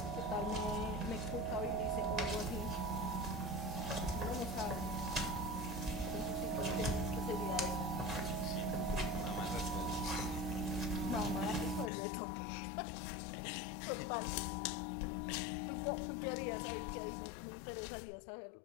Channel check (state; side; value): drops out; right; at 11.9 s